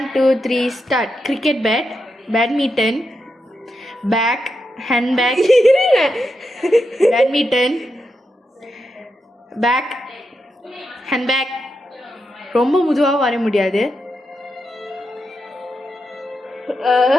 2 3 start. Cricket bat, badminton, bag, hand bag, badminton, bag, hand bag. ரொம்ப முதுவாக வர முடியாது.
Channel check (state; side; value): normal; both; correlation 0.86